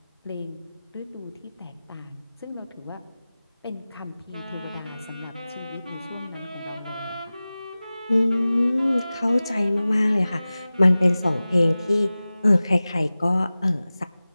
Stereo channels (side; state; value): both; inverted; correlation -0.97